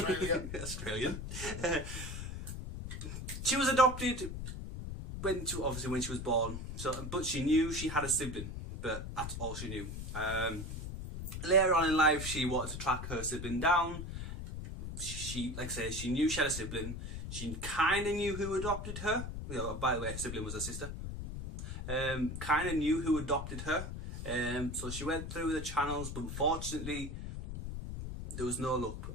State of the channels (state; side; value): noise; left; rumble, 6 dB below the sound